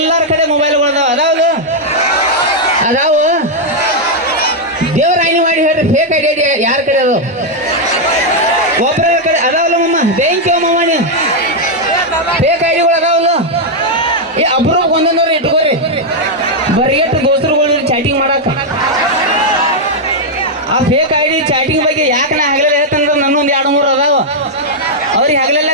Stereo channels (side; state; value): both; normal; correlation -0.02